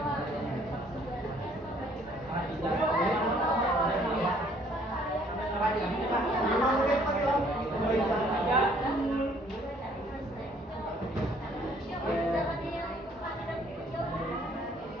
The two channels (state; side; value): normal; both; correlation 0.61